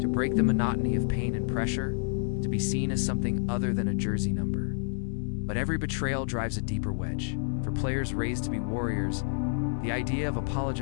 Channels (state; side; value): silent; right; 59 dB below the other